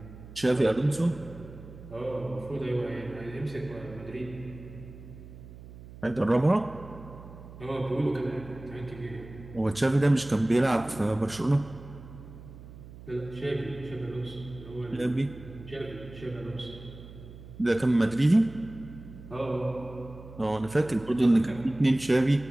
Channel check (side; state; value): right; noise; hum, 16 dB below the sound